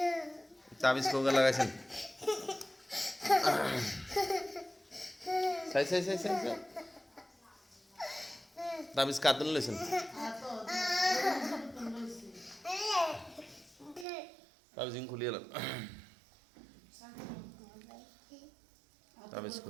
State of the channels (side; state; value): left; drops out; at 14.1 s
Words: তাবিজ কোগা লাগাইছেন। সাই সাই সাই সাই তাবিজ কাতুন লইছেন। তাবিজ খুলে এলাম, তাবিজ